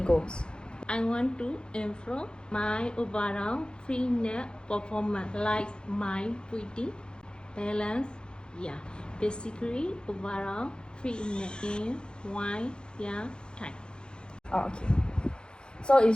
goals? I want to improve my overall fitness performance, like my breathing, balance, basically overall fitness in one year time. Oh, okay, so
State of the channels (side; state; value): right; late; 0.049 ms